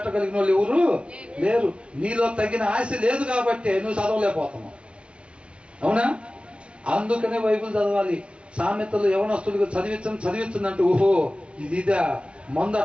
వాళ్ళు ఎవరు లేరు. నీలో తగిన ఆశ లేదు కాబట్టి నువ్వు చదవలేకపోతున్నావు. అవునా? అందుకనే బైబిల్ చదవాలి. సామెతలు యవనస్తులుగా చదివించంటే ఓహో ఇదిదా మందు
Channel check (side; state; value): left; late; 0.059 ms